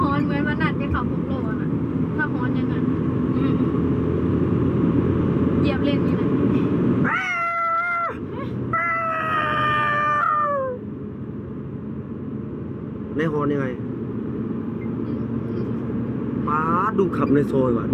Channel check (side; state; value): both; identical; correlation 1.00